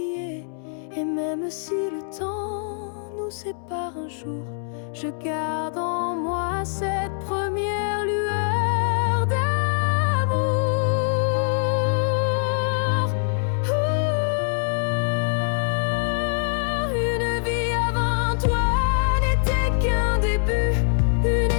Et même si le temps nous sépare un jour, je garde en moi cette première lueur d'amour. Une vie avant toi n'était qu'un début, une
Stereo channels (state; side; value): silent; right; 63 dB below the other